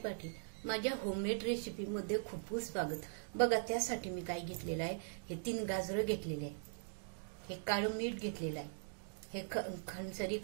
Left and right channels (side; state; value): left; silent; digital silence